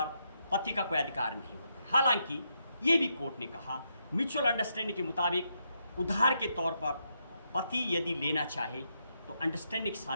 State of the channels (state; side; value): inverted; both; correlation -0.80